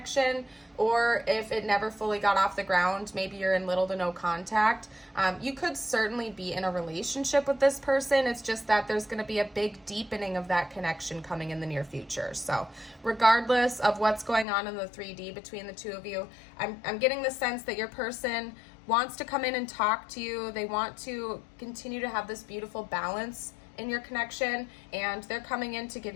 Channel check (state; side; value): drops out; right; at 14.5 s